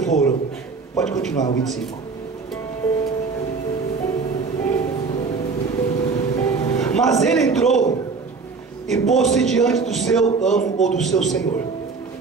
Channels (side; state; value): left; quieter; 4.6 dB